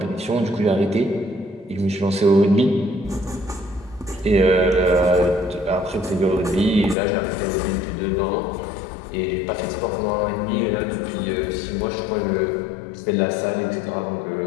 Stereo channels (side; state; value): right; drops out; at 7.0 s